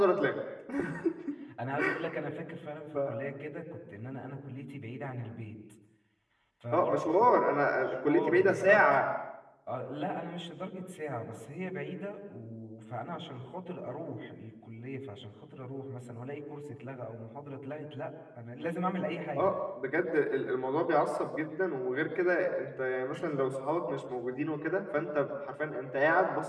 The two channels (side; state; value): both; identical; correlation 1.00